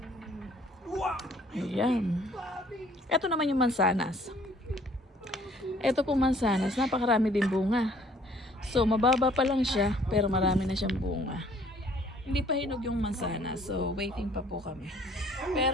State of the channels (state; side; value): normal; both; correlation 0.58